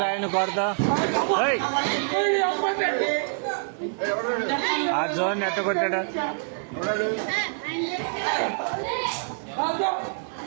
కొడతా ఆ జోన్ ఎట్ట కొట్టాడా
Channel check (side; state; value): left; silent; 58 dB below the other